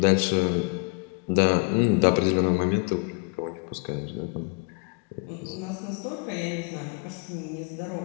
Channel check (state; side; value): quieter; right; 36.2 dB